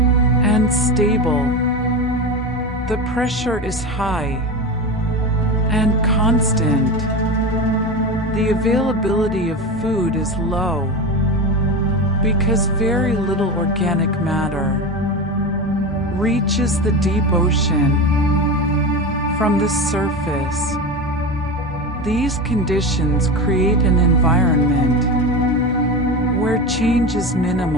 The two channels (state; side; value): normal; both; correlation 0.23